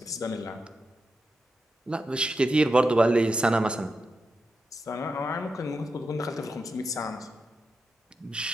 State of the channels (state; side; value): normal; both; correlation 0.87